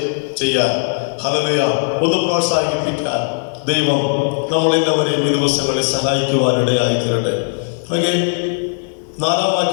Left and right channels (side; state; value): right; silent; 56 dB below the other